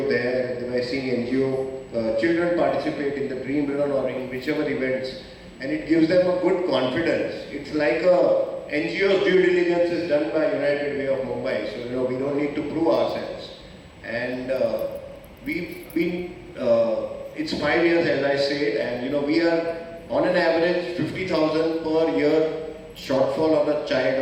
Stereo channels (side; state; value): both; identical; correlation 1.00